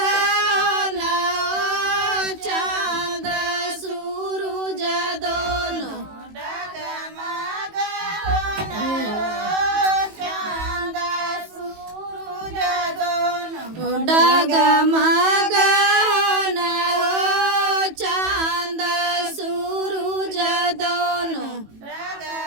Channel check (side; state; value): left; late; 18 ms